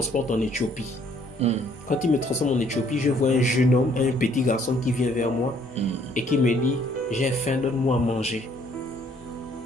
en Éthiopie. Quand il me transforme en Éthiopie, je vois un jeune homme, un petit garçon qui vient vers moi et qui me dit « J'ai faim, donne-moi à manger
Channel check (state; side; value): normal; both; correlation 0.63